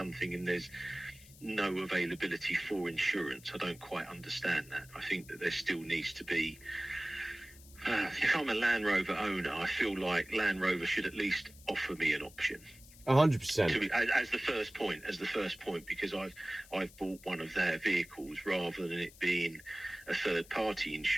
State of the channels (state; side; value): noise; left; hiss, 22 dB below the sound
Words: and there's no availability for insurance. I don't quite understand that. I think that there still needs to be, if I'm a Land Rover owner, I feel like Land Rover should at least offer me an option. 100%. As the first point, because I've bought one of their vehicles rather than it being a third party